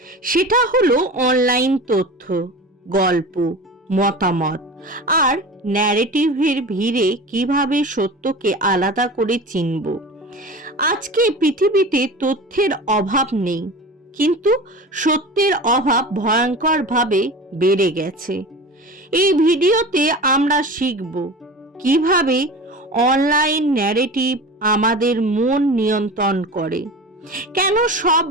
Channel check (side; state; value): both; normal; correlation 0.33